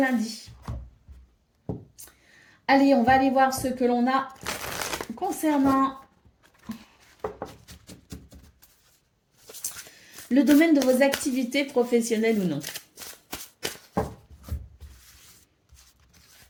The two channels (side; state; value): both; identical; correlation 1.00